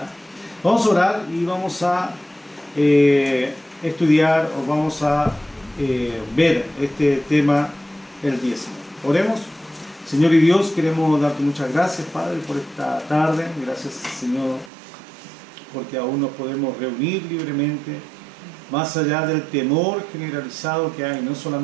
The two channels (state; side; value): drops out; left; at 14.7 s